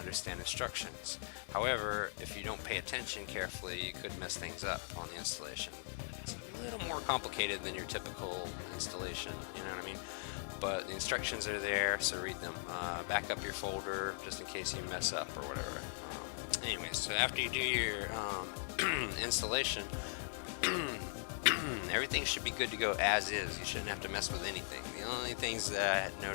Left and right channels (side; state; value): right; silent; digital silence